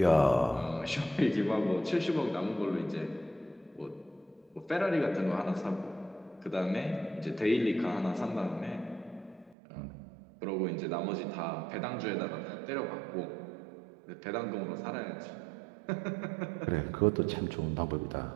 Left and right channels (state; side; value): drops out; left; at 9.6 s